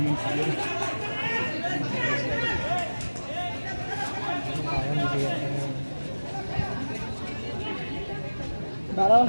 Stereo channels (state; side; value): inverted; both; correlation -1.00